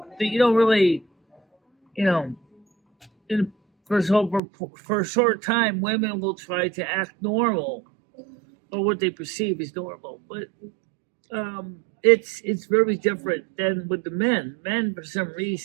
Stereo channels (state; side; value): drops out; left; at 4.4 s